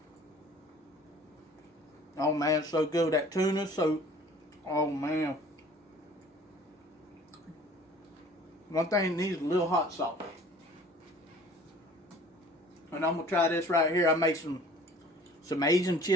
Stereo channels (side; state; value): both; normal; correlation 0.50